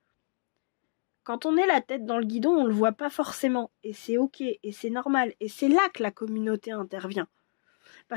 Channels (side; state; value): right; silent; digital silence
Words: Quand on est la tête dans le guidon, on le voit pas forcément. Et c'est ok, et c'est normal. Et c'est là que la communauté intervient.